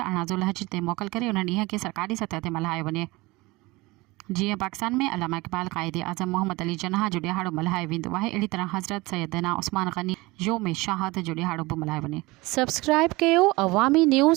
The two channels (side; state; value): left; quieter; 22.2 dB